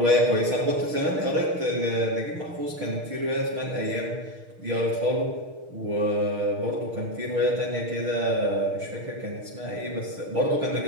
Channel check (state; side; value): late; left; 6.5 ms